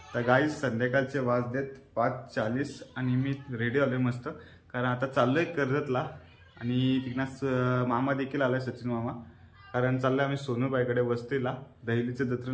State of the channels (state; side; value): identical; both; correlation 1.00